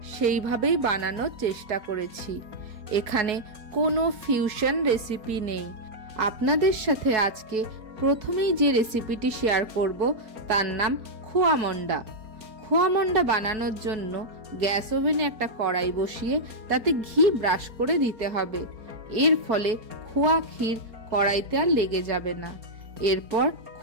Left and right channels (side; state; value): left; late; 4.7 ms